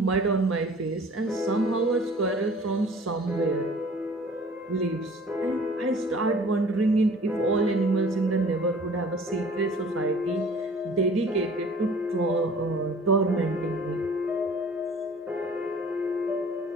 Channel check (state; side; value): normal; both; correlation 0.49